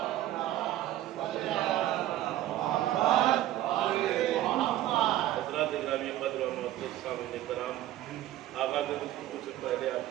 حضرات گرامی قدر و معزز سامعین کرام، آغاز گفتگو سے پہلے آپ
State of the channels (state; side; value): quieter; left; 13.8 dB